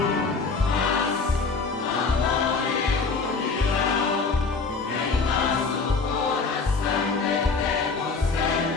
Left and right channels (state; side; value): quieter; right; 4.5 dB